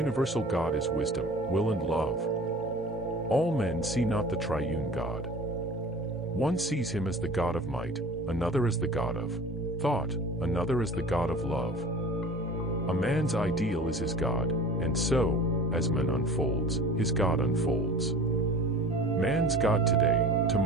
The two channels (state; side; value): normal; both; correlation 0.40